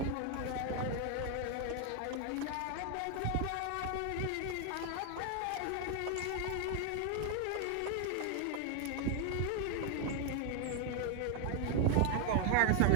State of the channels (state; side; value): different; both; correlation 0.00